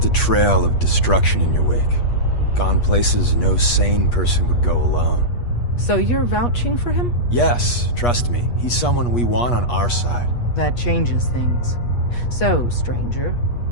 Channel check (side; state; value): right; late; 8.3 ms